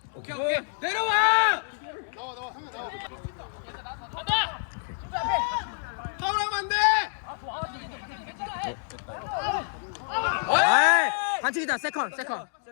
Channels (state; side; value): silent; right; digital silence